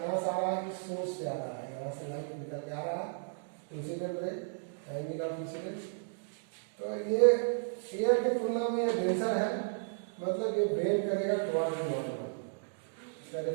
कहाँ से आ रहा है, किस सोर्स से आ रहा है, यहाँ से लाइट निकल के आ रहा है, incident ray, angle of incident. तो ये एयर की तुलना में ये डेंसर है, मतलब ये बेंड करेगा टुवर्ड नॉर्मल। इसका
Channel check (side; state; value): left; silent; digital silence